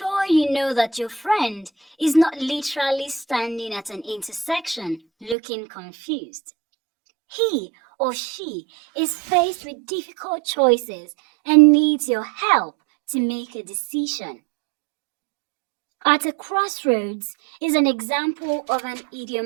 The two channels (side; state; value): left; drops out; at 5.4 s